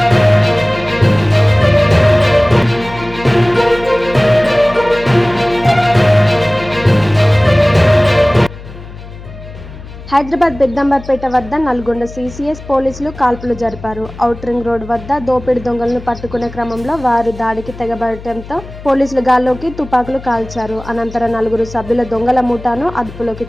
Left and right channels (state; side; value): noise; left; hum, 15 dB below the sound